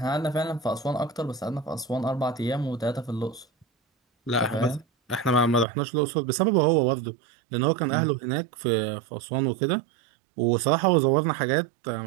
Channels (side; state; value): left; drops out; at 5.7 s